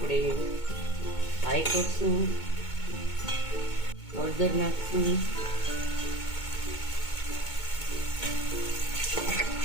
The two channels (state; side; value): late; right; 2.2 ms